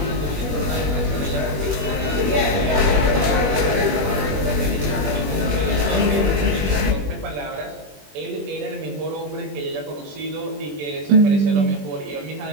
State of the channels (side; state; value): left; late; 20 ms